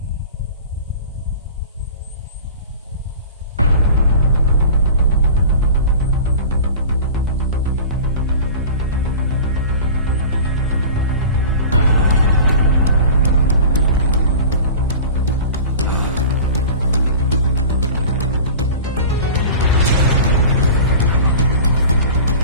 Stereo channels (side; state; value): both; inverted; correlation -0.38